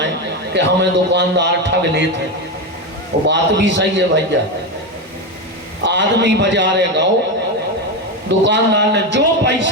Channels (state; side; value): normal; both; correlation 0.14